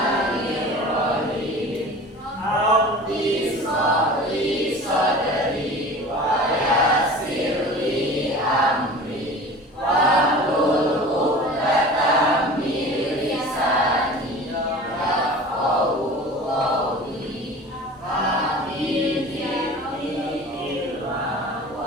Rabbi shrahli sadri wa yassir li amri wahlul 'uqdatam min lisani yafqahu qawli. Amin ya ilma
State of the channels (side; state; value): both; normal; correlation 0.39